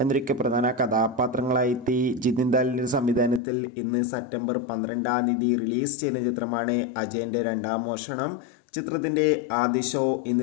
എന്നൊക്കെ പ്രധാന കഥാപാത്രങ്ങളായി ജിതിൻ ദാലിൻ്റെ സംവിധാനത്തിൽ ഇന്ന് സെപ്റ്റംബർ 12 റിലീസ് ചെയ്യുന്ന ചിത്രമാണ് അജയൻ്റെ രണ്ടാം മോഷണം. ചിത്രത്തിൻ്റെ ആദ്യ ഷോ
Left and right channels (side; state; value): right; drops out; at 3.4 s